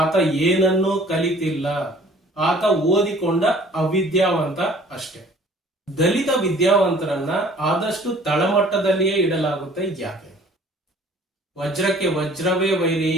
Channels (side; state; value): both; normal; correlation 0.52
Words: ಏನನ್ನೂ ಕಲಿತಿಲ್ಲ. ಆತ ಓದಿಕೊಂಡ ಅವಿದ್ಯಾವಂತ ಅಷ್ಟೇ. ದಲಿತ ವಿದ್ಯಾವಂತರನ್ನ ಆದಷ್ಟು ತಳಮಟ್ಟದಲ್ಲಿಯೇ ಇಡಲಾಗುತ್ತೆ. ಯಾಕೆ? ವಜ್ರಕ್ಕೆ ವಜ್ರವೇ ವೈರಿ,